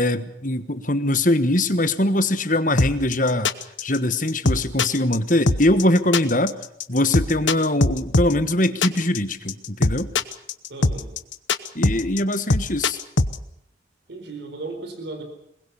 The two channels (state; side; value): normal; both; correlation 0.58